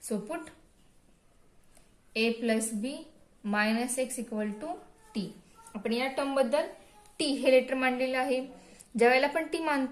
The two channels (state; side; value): identical; both; correlation 1.00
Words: So put a plus b minus x equal to t. आपण या टर्म बद्दल t हे लेटर मांडलेलं आहे. ज्या वेळेला आपण t